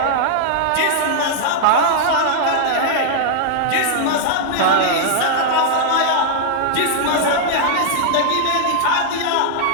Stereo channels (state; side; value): different; both; correlation -0.01